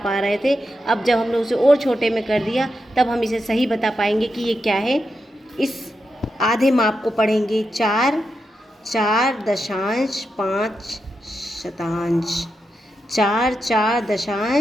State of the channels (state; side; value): normal; both; correlation 0.87